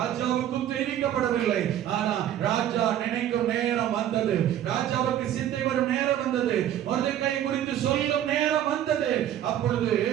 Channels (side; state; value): left; quieter; 11.2 dB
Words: தெரிவிக்கப்படவில்லை. ஆனா ராஜா நினைக்கும் நேரம் வந்தது. ராஜாவுக்கு சிந்தை வரும் நேரம் வந்தது. மொர்தெகாய் குறித்து சொல்லும் நேரம் வந்தது. அப்பொழுது